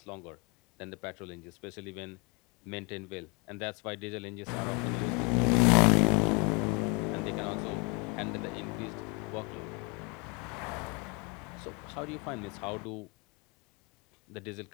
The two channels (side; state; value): right; quieter; 30.0 dB